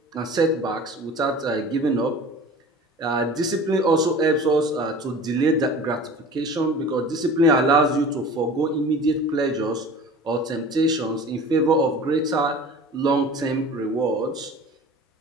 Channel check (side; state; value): both; normal; correlation 0.41